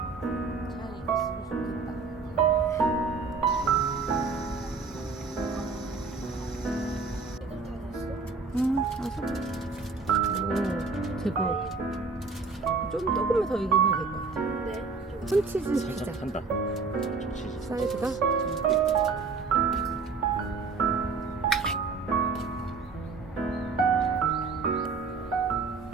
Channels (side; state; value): left; quieter; 4.5 dB